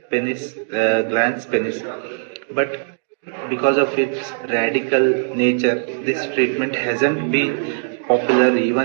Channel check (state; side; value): silent; left; digital silence